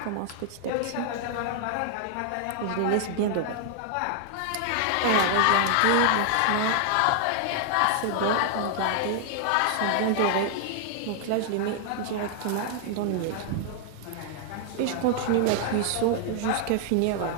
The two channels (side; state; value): both; different; correlation 0.00